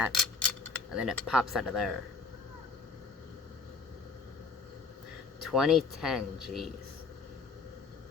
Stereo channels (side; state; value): right; quieter; 4.5 dB